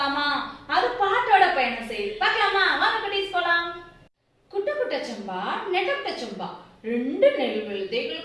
அது பாட்டோட பயணம் செய்யுது, பார்க்கலாமா? வாங்க குட்டீஸ் போலாம். குட்ட குட்ட சம்பா நெட்ட சம்பா ரெண்டு நெல்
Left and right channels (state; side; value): identical; both; correlation 1.00